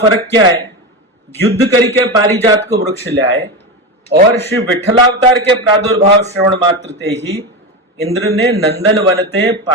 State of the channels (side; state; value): both; normal; correlation 0.18